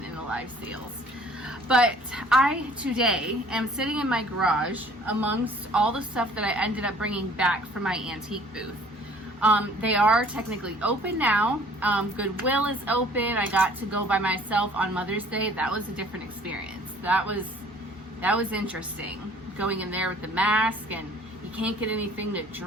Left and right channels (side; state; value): both; normal; correlation 0.54